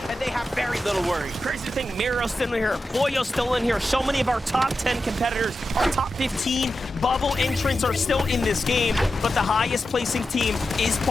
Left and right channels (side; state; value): both; normal; correlation 0.90